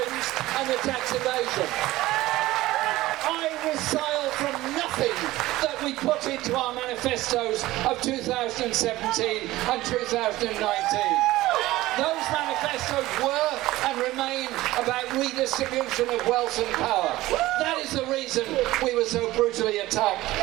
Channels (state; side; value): quieter; left; 17.3 dB